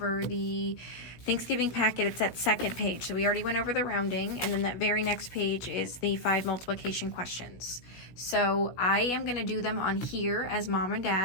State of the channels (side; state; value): right; late; 16 ms